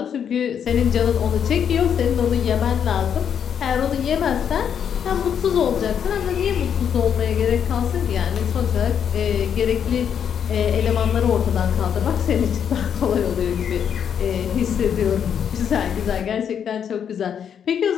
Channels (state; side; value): quieter; right; 8.2 dB